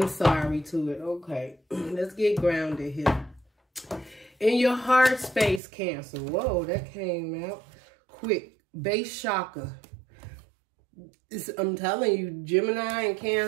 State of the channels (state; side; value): drops out; left; at 5.6 s